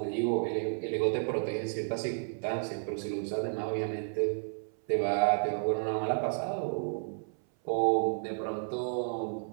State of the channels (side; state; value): left; silent; 56 dB below the other